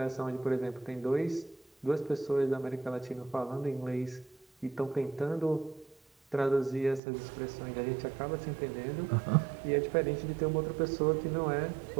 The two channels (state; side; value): drops out; left; at 7.0 s